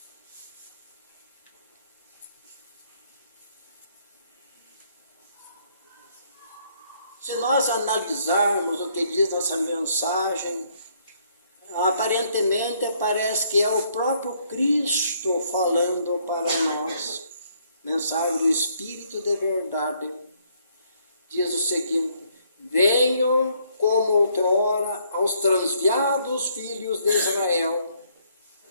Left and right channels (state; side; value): inverted; both; correlation -0.68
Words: Se nós analisarmos o que diz essa mensagem, aparentemente parece que é o próprio Cristo falando para nós. Mensagem do Espírito de verdade. Diz o seguinte: venho como outrora aos transviados filhos de Israel,